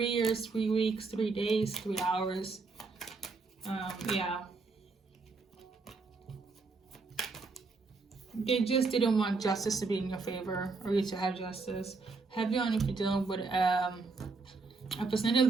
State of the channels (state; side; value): quieter; left; 4.1 dB